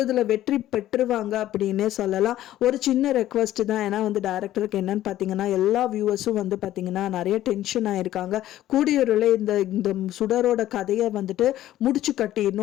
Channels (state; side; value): quieter; right; 13.5 dB